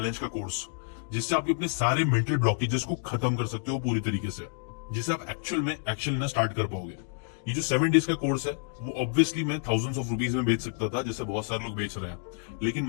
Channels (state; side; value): silent; right; digital silence